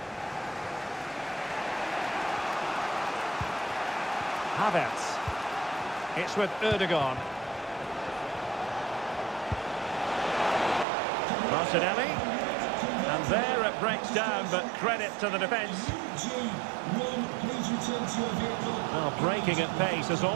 Havertz. It's with Erdogan. Martinelli. And there it breaks down, but credit to the defence. Well, breaking at pace is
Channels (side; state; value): left; drops out; at 10.9 s